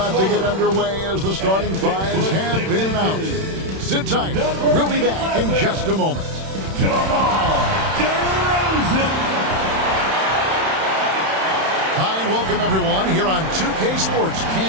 to get underway as the starting fives have been announced. Sit tight. We'll be back in just a moment. Hi, and welcome everyone here on 2K Sports.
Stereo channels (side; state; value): left; late; 31 ms